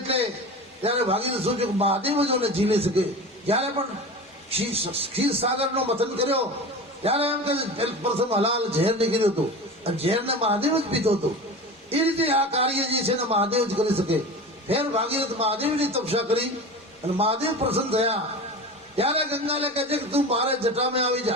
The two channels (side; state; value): both; normal; correlation 0.31